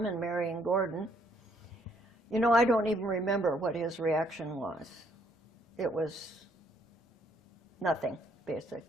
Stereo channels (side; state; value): both; normal; correlation 0.68